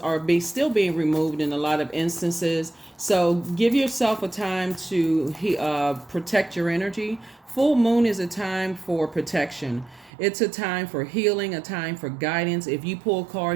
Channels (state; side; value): drops out; left; at 10.1 s